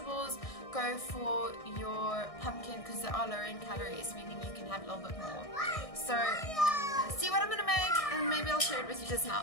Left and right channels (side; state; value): right; late; 1.6 ms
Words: go for your pumpkin because they are lower in calories, meaning you can have a little bit more. So see what I'm gonna make, and maybe I'll share it with you just